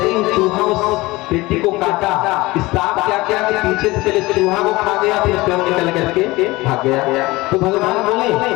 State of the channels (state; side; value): quieter; right; 20.8 dB